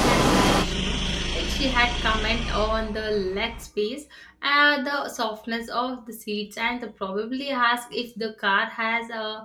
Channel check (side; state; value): both; identical; correlation 1.00